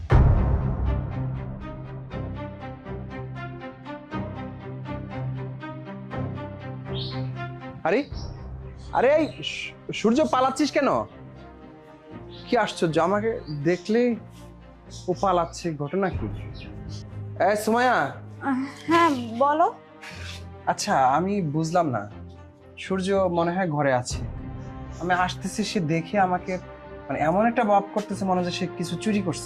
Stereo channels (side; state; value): both; identical; correlation 1.00